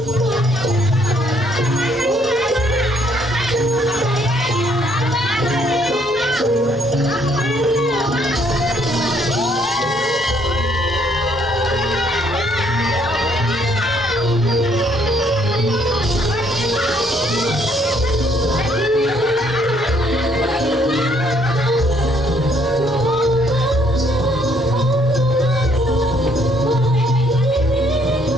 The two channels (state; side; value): normal; both; correlation 0.67